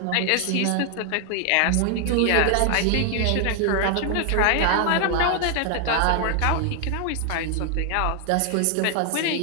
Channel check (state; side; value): different; both; correlation 0.00